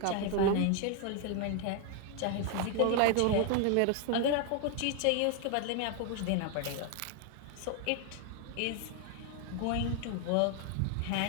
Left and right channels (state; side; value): different; both; correlation 0.00